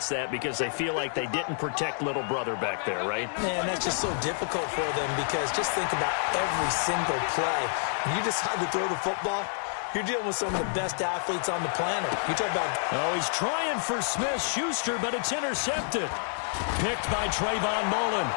that because they feel like they didn't protect little brother back there, right? Man, that's just so difficult for them because just think about every single play. When you decide to throw the football, you're dealing with some of the best athletes on the planet. You talk about... Oh, he's trying for Smith-Schuster, but it's intercepted. Picked by Trayvon Mullen.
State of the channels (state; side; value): silent; right; digital silence